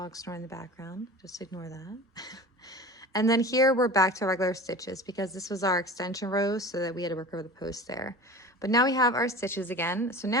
snoring in the background, just ignore that. And then here we're back to regular stitches because this was our extension row, so that we had to work over the post there. But now we have our stitches again. So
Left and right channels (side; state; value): both; normal; correlation 0.36